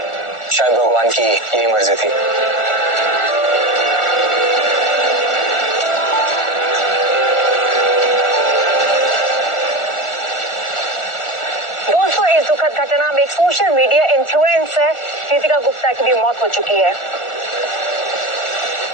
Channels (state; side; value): late; right; 1.4 ms